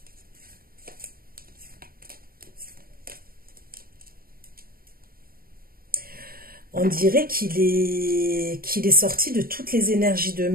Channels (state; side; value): late; left; 0.43 ms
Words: On dirait qu'il est sorti de toutes les énergies de